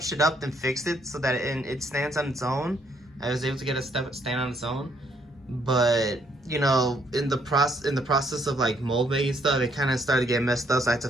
it up and fixed it so that it stands on its own. I was able to get a stand on its own, but in the process of like mold making stuff, it kind of started to get messed up, so I had to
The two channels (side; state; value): both; normal; correlation 0.70